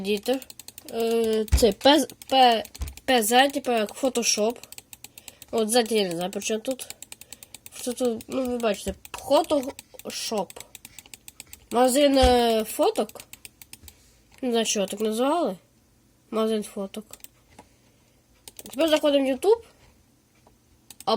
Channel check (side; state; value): both; identical; correlation 1.00